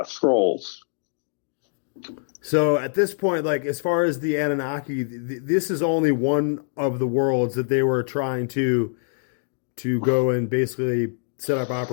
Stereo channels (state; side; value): silent; right; digital silence